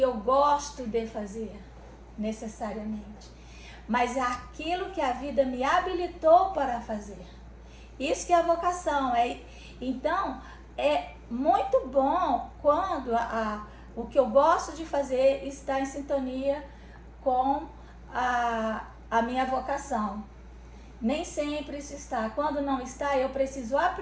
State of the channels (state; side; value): identical; both; correlation 1.00